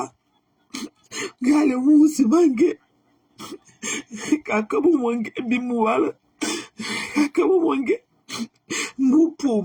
Gale wu si bangue. Kaka bu mange bi mu wala. Kaka bu mange. Mu po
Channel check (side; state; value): both; identical; correlation 1.00